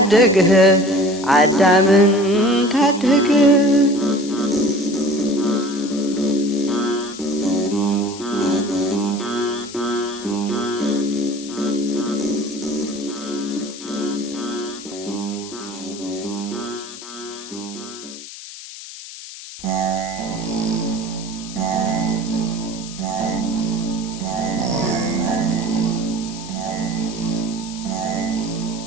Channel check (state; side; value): noise; left; hiss, 13 dB below the sound